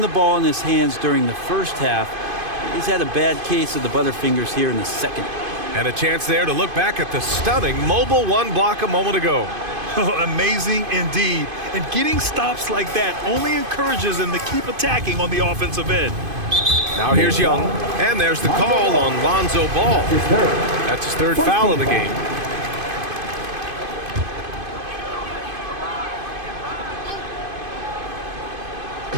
the ball in his hands during the first half. He's had a bad case of the butterfingers here in the second. And a chance there to look back at the stunning mobile 1 block a moment ago. Amazing indeed. And getting stops like that only encourages them to keep attacking on the offensive end. Now here's Young. And there's the call on Lonzo Ball. That's his 3rd foul of the game.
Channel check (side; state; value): left; late; 2.5 ms